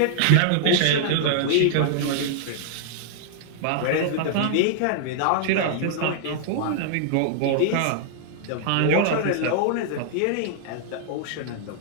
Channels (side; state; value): both; different; correlation -0.01